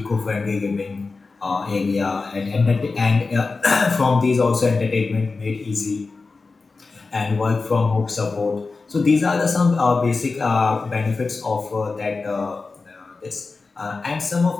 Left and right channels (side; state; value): right; quieter; 4.1 dB